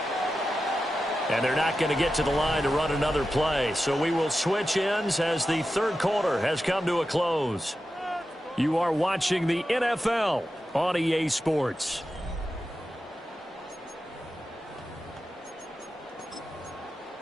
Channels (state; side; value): normal; both; correlation 0.91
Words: And they're not going to get to the line to run another play. So we will switch ends as the 3rd quarter has come to a close. You are watching the NFL on EA Sports.